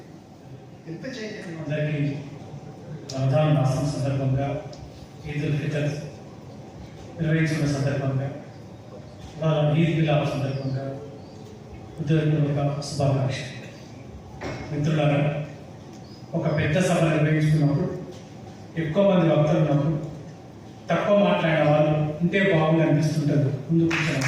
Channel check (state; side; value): identical; both; correlation 1.00